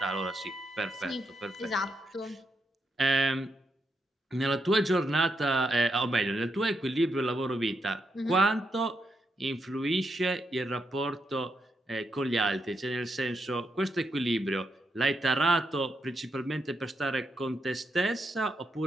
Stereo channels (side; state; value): both; normal; correlation 0.81